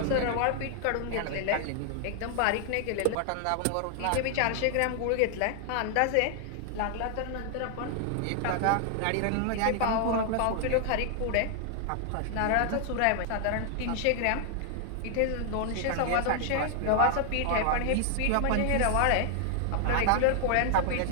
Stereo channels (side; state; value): both; different; correlation 0.00